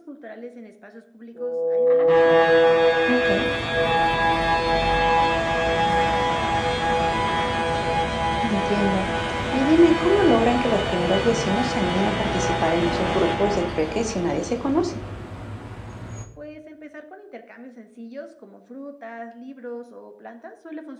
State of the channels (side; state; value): both; identical; correlation 1.00